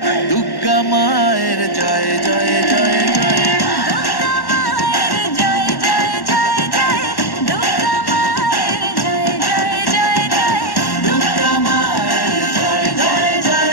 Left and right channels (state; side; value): late; right; 1.1 ms